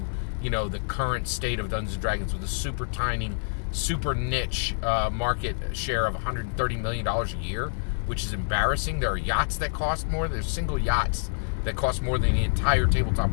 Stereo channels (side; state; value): right; silent; digital silence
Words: the current state of Dungeons & Dragons with a super tiny, super niche market share of $130 million a year, which is embarrassing. There are yachts that cost more. There's single yachts that cost more than the entire tabletop